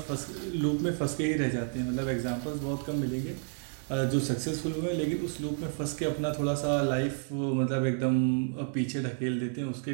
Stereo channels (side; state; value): left; silent; 57 dB below the other